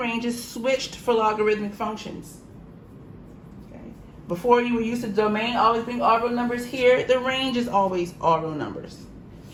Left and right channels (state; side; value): identical; both; correlation 1.00